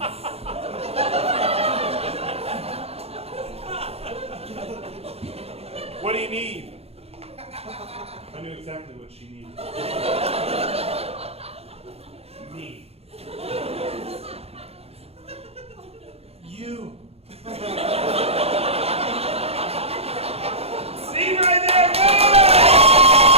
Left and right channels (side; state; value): left; late; 0.29 ms